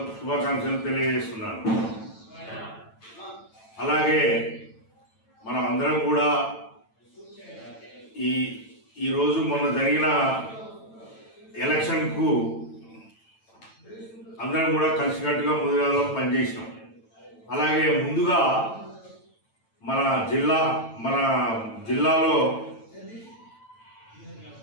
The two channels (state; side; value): late; right; 9.0 ms